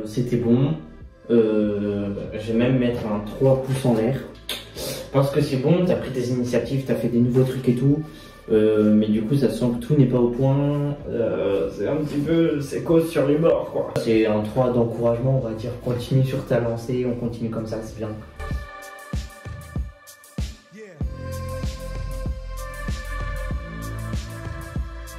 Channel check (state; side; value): identical; both; correlation 1.00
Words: C'était bon. Je vais même mettre un 3 pouces en l'air. Parce que c'est bon, t'as pris des initiatives, t'as fait des nouveaux trucs et tout. Mais du coup, ça sent que tout n'est pas au point. C'est un petit peu. C'est cause sur les bords, quoi. C'est un 3 d'encouragement, on va dire. Continue sur ta lancée, on continue comme ça, c'est bien.